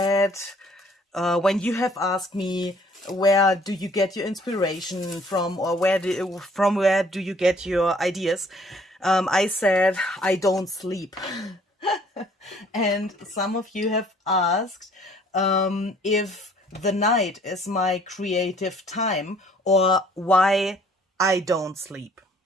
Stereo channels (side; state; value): both; normal; correlation 0.58